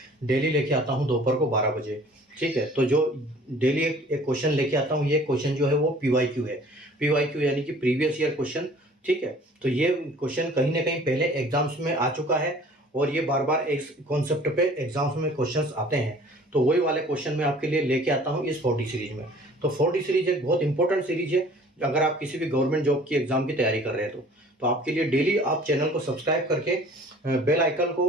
डेली लेके आता हूँ दोपहर को 12 बजे। ठीक है, तो जो डेली एक क्वेश्चन लेके आता हूँ, ये क्वेश्चन जो है वो PYQ है। PYQ यानी कि प्रीवियस ईयर क्वेश्चन। ठीक है, तो ये क्वेश्चन कहीं ना कहीं पहले एग्जाम्स में आ चुका है और ये बार बार इस कॉन्सेप्ट पे एग्जाम्स में क्वेश्चंस आते हैं। तो वही वाले क्वेश्चन मैं आपके लिए लेके आता हूँ इस 40 सीरीज में। तो 40 सीरीज एक बहुत इंपॉर्टेंट सीरीज है अगर आप किसी भी गवर्नमेंट जॉब की एग्जाम की तैयारी कर रहे हैं तो आपके लिए डेली आप चैनल को सब्सक्राइब करके बेल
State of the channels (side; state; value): both; normal; correlation 0.50